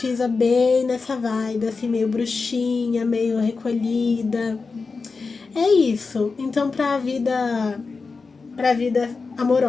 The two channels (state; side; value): quieter; right; 4.4 dB